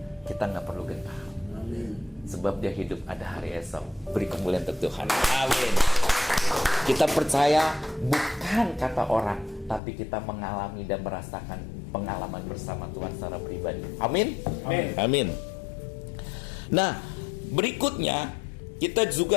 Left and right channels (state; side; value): drops out; right; at 9.8 s